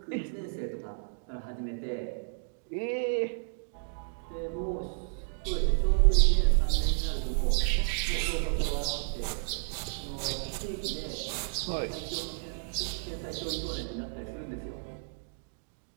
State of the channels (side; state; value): left; silent; digital silence